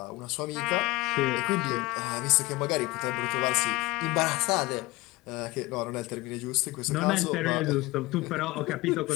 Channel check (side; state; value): right; quieter; 21.2 dB